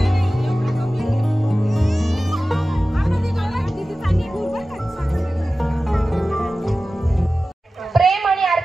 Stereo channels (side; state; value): both; normal; correlation 0.95